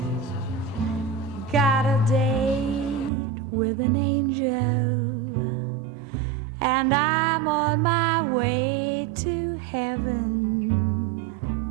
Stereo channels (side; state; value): left; drops out; at 3.1 s